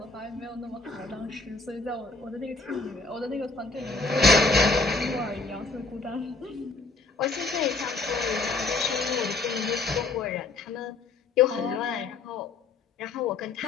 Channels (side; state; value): right; quieter; 3.7 dB